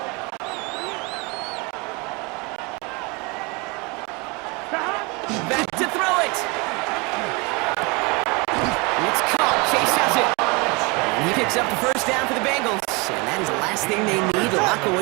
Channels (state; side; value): quieter; left; 28.2 dB